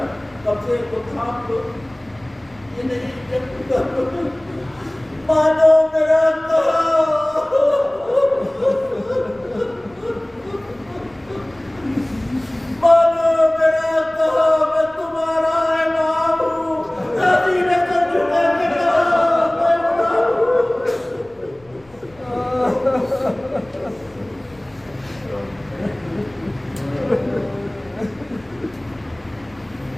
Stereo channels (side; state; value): left; noise; rumble, 29 dB below the sound